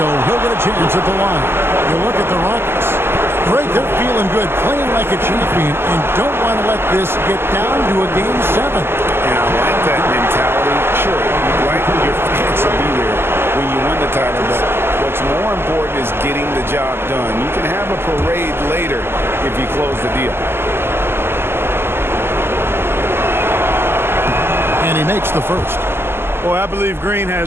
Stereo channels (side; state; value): left; late; 0.12 ms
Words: he'll get a chance at the line. You look at the Rockets. Great, they're feeling good, playing like a champion, and don't want to let this get down to a Game 7. And I like that mentality. Sure, you'd like your fans to be there when you win the title, but what's more important is getting the job done. You can have a parade later if you close the deal. And he makes the first. Boy, I believe Green